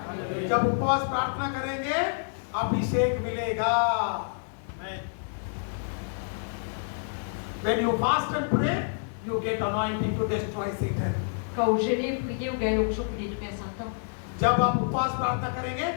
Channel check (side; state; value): right; silent; digital silence